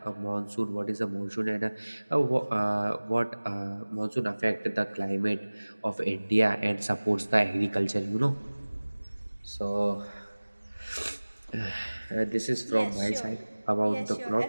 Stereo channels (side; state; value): both; inverted; correlation -1.00